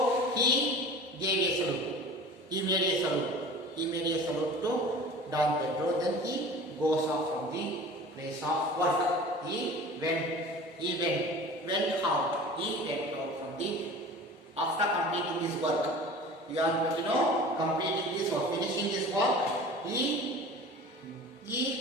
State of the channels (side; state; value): both; normal; correlation 0.40